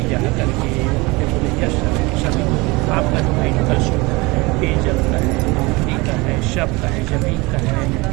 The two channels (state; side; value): quieter; left; 24.1 dB